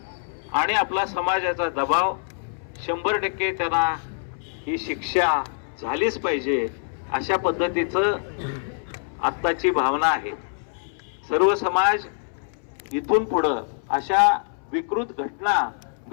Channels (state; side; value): silent; right; 62 dB below the other